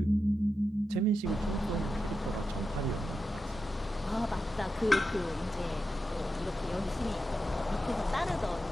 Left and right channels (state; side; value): normal; both; correlation 0.89